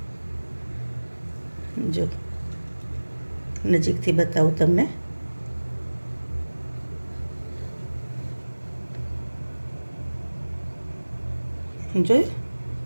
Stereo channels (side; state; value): both; inverted; correlation -1.00